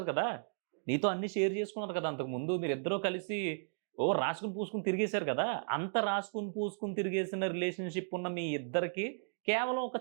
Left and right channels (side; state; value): left; silent; digital silence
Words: కదా! నీతో అన్నీ షేర్ చేసుకున్నారు కదా! అంతకుముందు మీరిద్దరూ కలిసి రాసుకొని, పూసుకొని తిరిగేసారు కదా! అంత రాసుకొని, పూసుకొని తిరిగేసిన రిలేషన్‌షిప్ ఉన్న మీ ఇద్దరికి కేవలం ఒక